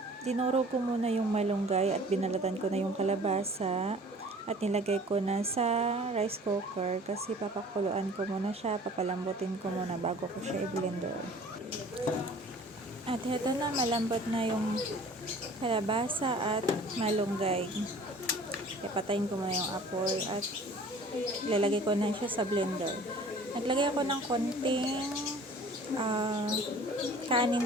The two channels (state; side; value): normal; both; correlation 0.48